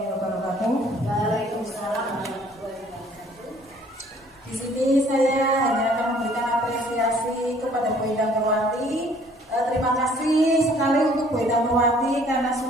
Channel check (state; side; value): normal; both; correlation 0.58